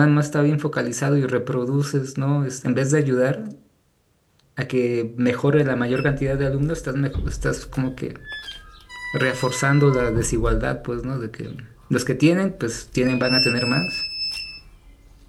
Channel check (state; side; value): identical; both; correlation 1.00